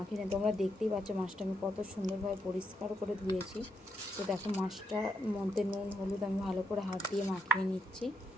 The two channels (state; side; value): normal; both; correlation 0.81